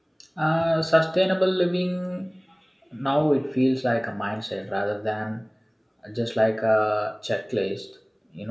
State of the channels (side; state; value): both; identical; correlation 1.00